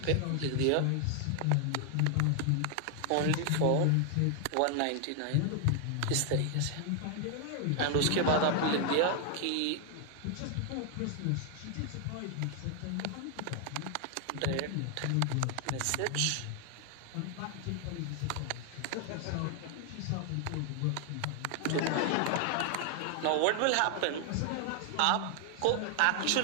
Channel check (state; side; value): different; both; correlation 0.00